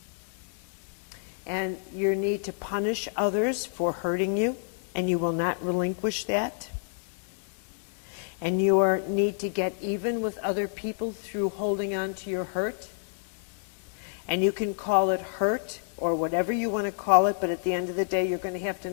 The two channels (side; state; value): right; silent; 59 dB below the other